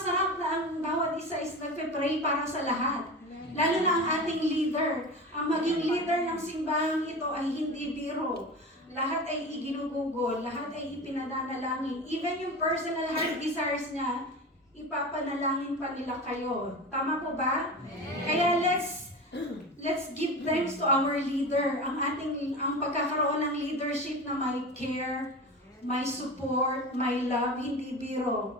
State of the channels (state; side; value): normal; both; correlation 0.29